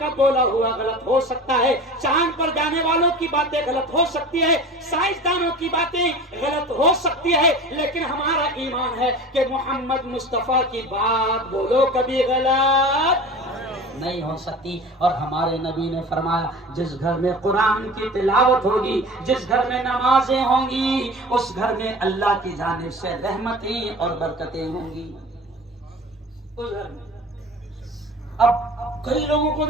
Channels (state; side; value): normal; both; correlation 0.37